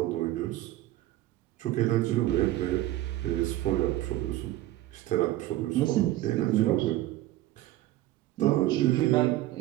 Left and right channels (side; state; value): left; quieter; 15.4 dB